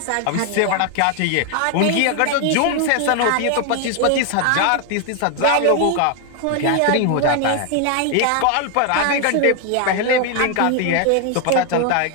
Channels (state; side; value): different; both; correlation 0.00